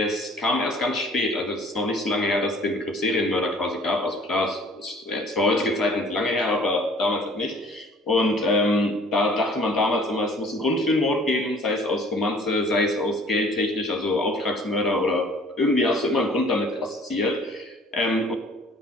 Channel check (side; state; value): both; normal; correlation 0.53